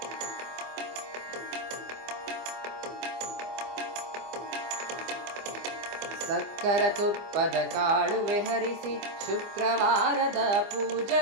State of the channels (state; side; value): late; left; 25 ms